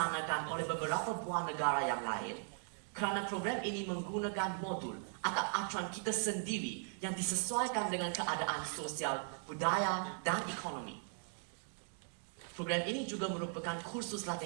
oleh beberapa buah negara yang lain kerana program ini menggunakan modul atau acuan kita sendiri yang disesuaikan dengan keadaan sosial, budaya, dan ekonomi. Program ini juga merupakan kursus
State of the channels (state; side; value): silent; left; 52 dB below the other